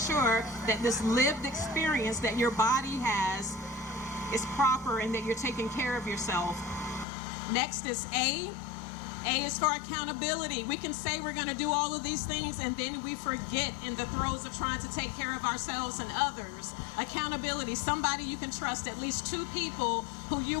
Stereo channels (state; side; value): drops out; right; at 7.1 s